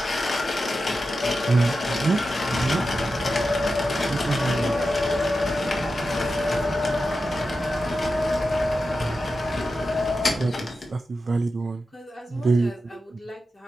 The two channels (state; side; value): normal; both; correlation 0.91